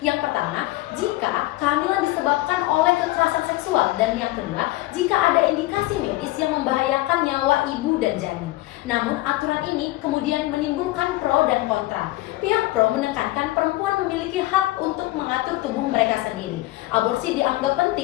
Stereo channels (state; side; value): quieter; right; 18.4 dB